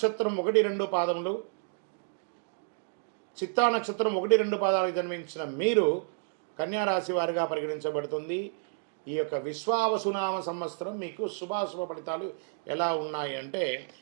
1, 2 పాదములు, చిత్తా నక్షత్రం 1, 2 పాదాలకు జన్మించిన మీరు కన్యా రాశి వారిగా పరిగణించబడుతుంది. ఈ యొక్క విశ్వావసునామ సంవత్సరం మీకు శుభాశుభ ఫలితాలు ఎలా ఉన్నాయి అంటే,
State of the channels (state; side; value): silent; left; digital silence